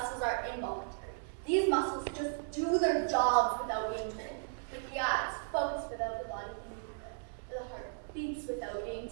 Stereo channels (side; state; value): left; silent; digital silence